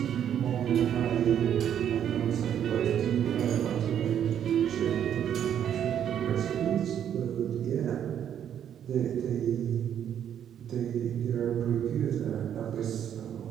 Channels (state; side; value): quieter; left; 9.5 dB